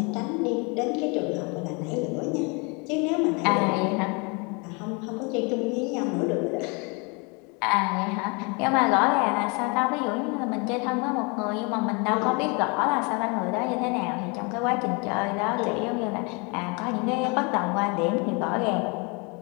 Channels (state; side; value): quieter; right; 31.5 dB